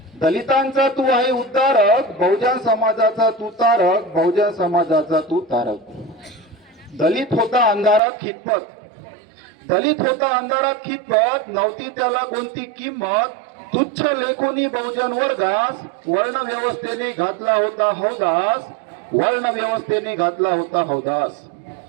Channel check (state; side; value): drops out; left; at 8.0 s